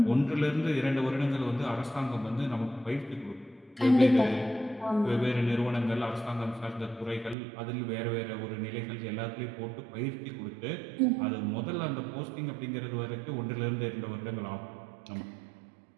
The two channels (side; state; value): left; drops out; at 7.4 s